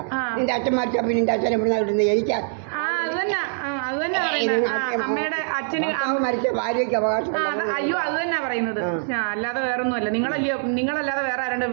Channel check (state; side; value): silent; left; digital silence